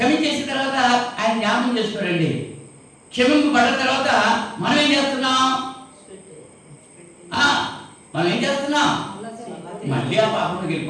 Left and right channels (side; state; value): both; identical; correlation 1.00